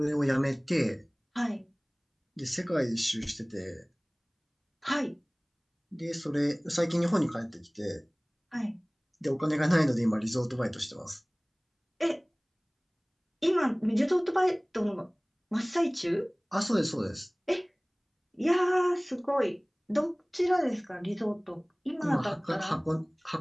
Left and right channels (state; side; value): identical; both; correlation 1.00